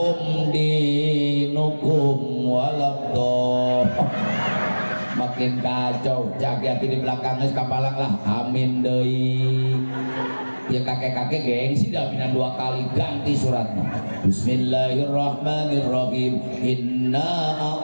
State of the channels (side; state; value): both; inverted; correlation -1.00